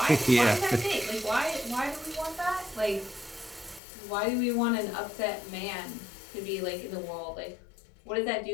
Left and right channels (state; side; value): drops out; right; at 3.8 s